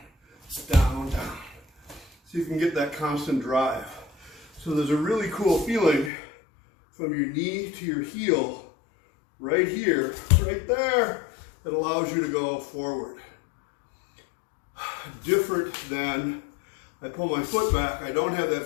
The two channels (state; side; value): drops out; right; at 6.1 s